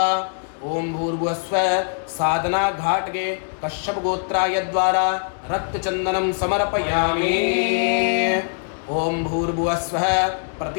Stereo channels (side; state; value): right; silent; digital silence